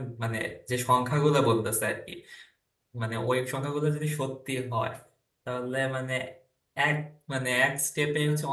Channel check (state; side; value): identical; both; correlation 1.00